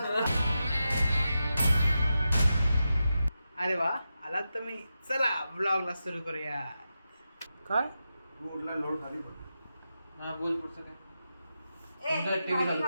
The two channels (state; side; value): inverted; both; correlation -0.89